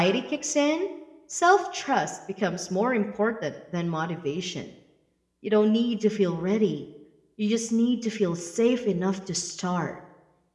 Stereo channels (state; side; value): identical; both; correlation 1.00